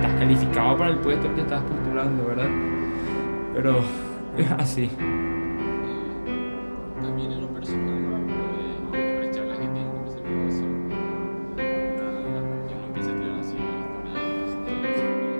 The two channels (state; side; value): inverted; both; correlation -1.00